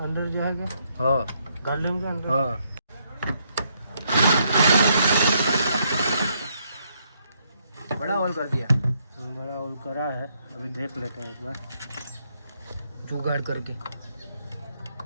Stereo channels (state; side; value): inverted; both; correlation -0.74